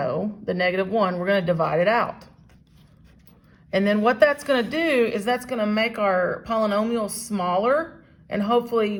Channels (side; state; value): both; identical; correlation 1.00